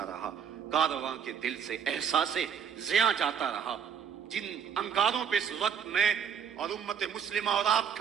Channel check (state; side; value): quieter; left; 7.7 dB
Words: رہا، کارواں کے دل سے احساس زیاں جاتا رہا۔ جن انگاروں پہ اس وقت میں اور امت مسلمہ اور آپ